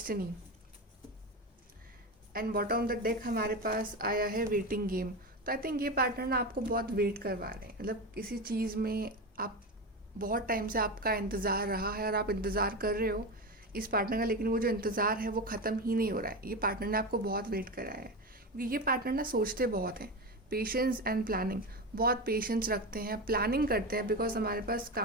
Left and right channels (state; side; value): normal; both; correlation 0.20